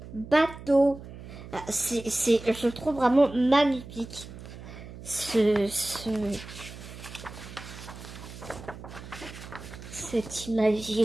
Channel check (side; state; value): right; noise; hum, 14 dB below the sound